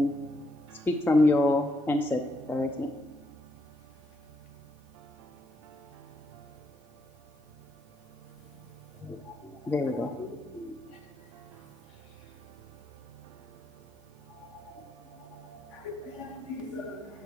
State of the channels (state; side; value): normal; both; correlation 0.78